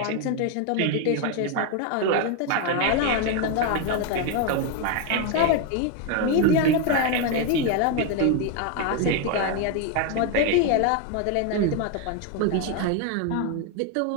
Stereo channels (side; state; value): both; different; correlation 0.01